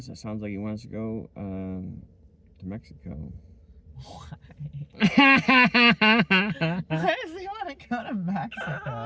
like he wants to go to Mexico. Why? Why does he want to go to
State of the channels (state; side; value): identical; both; correlation 1.00